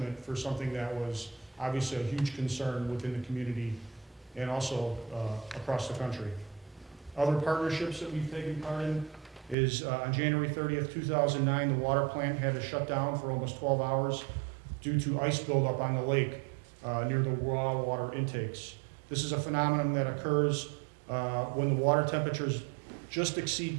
for something that was obviously a huge concern within the community and also across the country. Other partnerships that we've taken part in is on January 30th, 2009, the water plant had to shut down for almost 12 hours due to ice buildup on the lake near the raw water intakes. This is a phenomenon that occurs when the water temperatures just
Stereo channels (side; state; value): left; drops out; at 9.6 s